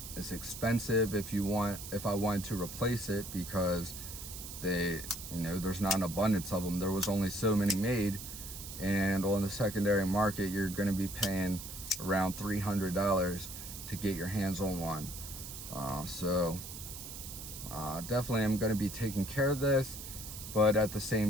it's expensive if I wanted to replace it, because you know, there's not an abundance of them. There was only so many made, and on the secondary market you're going to be paying around $300 to get your hands on one. So definitely I'm going to be taking care of this, but at the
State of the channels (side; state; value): right; noise; hiss, 10 dB below the sound